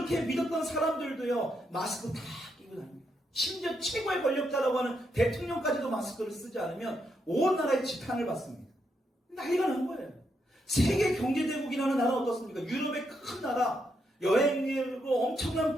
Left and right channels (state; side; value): normal; both; correlation 0.79